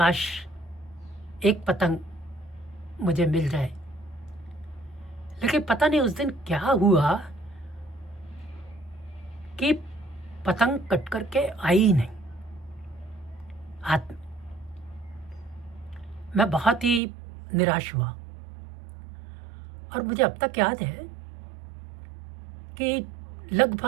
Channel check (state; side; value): drops out; left; at 17.0 s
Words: एक पतंग मुझे मिल जाए। लेकिन पता नहीं उस दिन क्या हुआ कि पतंग कट करके आई ही नहीं हाथ में। मैं बहुत ही निराश हुआ। और मुझे अब तक याद है कि